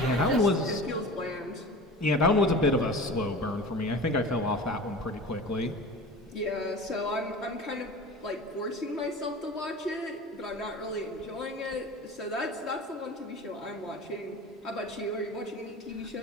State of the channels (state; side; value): normal; both; correlation 0.36